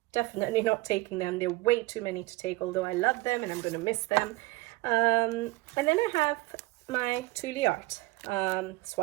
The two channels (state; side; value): quieter; left; 20.9 dB